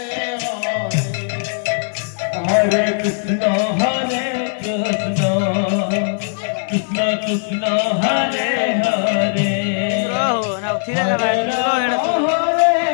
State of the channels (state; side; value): silent; right; digital silence